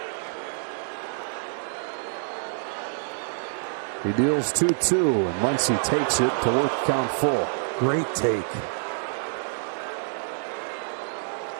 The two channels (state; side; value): silent; left; 60 dB below the other